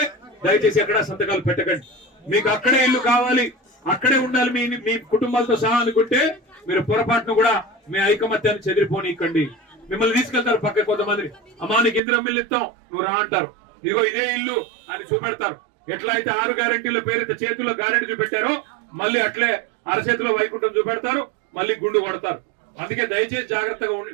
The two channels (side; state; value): left; drops out; at 12.0 s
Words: దయచేసి ఎక్కడ సంతకాలు పెట్టకండి. మీకు అక్కడే ఇల్లు కావాలి, అక్కడే ఉండాలి మీ కుటుంబాలతో సహా అనుకుంటే మీరు పొరపాటును కూడా మీ ఐకమత్యాన్ని చెదిరిపోనికండి. మిమ్మల్ని తీసుకెళ్తారు పక్క కొంతమంది, అమ్మా నీకు ఇందిరమ్మ ఇల్లు ఇస్తాం, నువ్వు రా అంటారు. ఇదిగో ఇదే ఇల్లు అని చూపెడతారు. ఎట్లా అయితే 6 గ్యారెంటీల పేరుతో చేతుల్లో గ్యారెంటీ చూపెట్టారో మళ్ళీ అట్లే అరచేతిలో వైకుంఠం చూపెడతారు, మళ్ళీ గుండు కొడతారు. అందుకే దయచేసి జాగ్రత్తగా